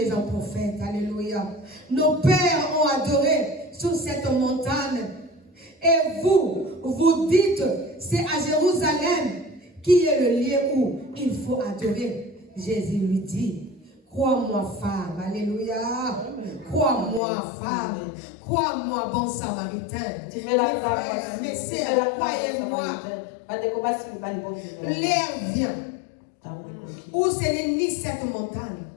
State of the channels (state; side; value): drops out; right; at 17.2 s